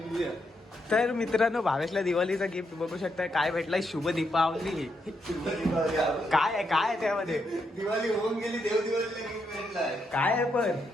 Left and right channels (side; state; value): both; normal; correlation 0.80